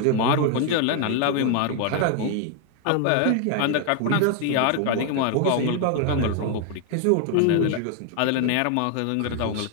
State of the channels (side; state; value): both; different; correlation 0.00